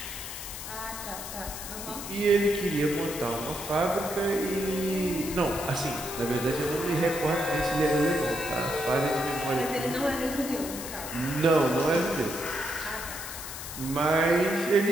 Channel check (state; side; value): noise; left; hiss, 9 dB below the sound